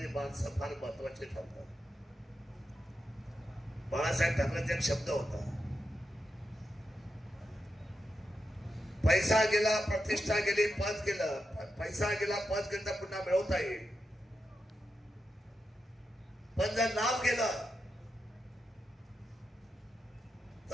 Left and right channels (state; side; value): normal; both; correlation 0.87